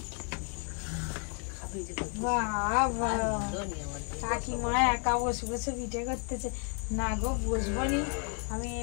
বাবা, কাকিমা একা বসে বসে পিঠে করতেছে। না গো, বসবো নি, আমি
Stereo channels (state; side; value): quieter; right; 38.9 dB